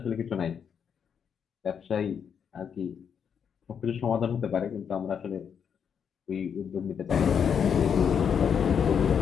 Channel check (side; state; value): right; quieter; 7.4 dB